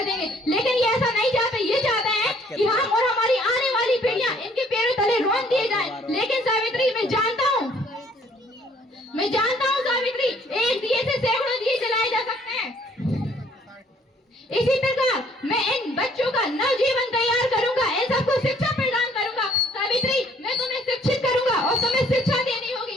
देंगे। लेकिन ये ऐसा नहीं चाहते, ये चाहते हैं कि हम और हमारी आने वाली पीढ़ियां इनके पैरों तले रोन दिए जाएं। लेकिन सावित्री, मैं जानता हूँ सावित्री, एक दिए से सैकड़ों दिए जलाए जा सकते हैं। इसी प्रकार मैं इन बच्चों का नवजीवन तैयार करूंगा, इन सबको शिक्षा प्रदान करूंगा। सावित्री, मैं तुम्हें शिक्षित करूंगा और तुम्हें शिक्षा देनी होगी,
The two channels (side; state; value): both; normal; correlation 0.61